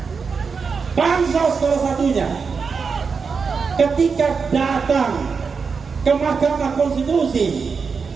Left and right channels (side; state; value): left; quieter; 5.4 dB